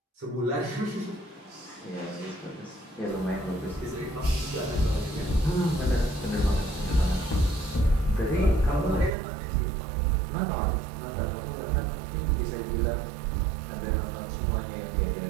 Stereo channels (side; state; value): left; drops out; at 9.2 s